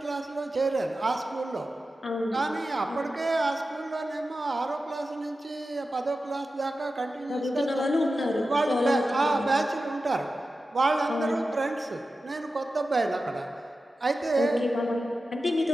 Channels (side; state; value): both; normal; correlation 0.93